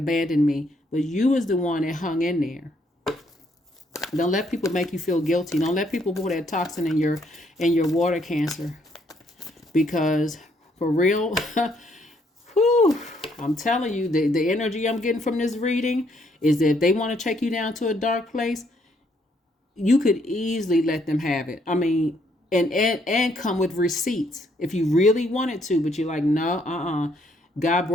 me. But you was the one that hung in there. Don't let people make you feel guilty. Don't let people put that toxin in your water, Cancer. Because for real, whew, I'm telling you, the energy I'm getting from this reading is that if they want to take you down to a dark place, you could easily let them have it. I mean, and come with receipts if you really wanted to, but you're like, no, God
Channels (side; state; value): both; normal; correlation 0.70